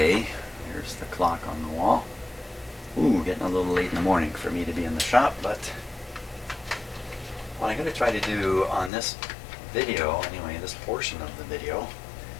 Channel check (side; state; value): right; drops out; at 8.9 s